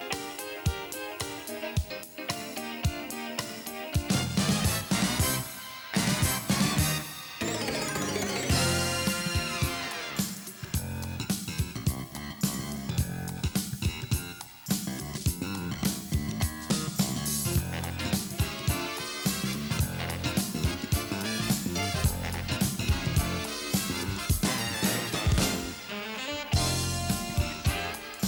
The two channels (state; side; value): identical; both; correlation 1.00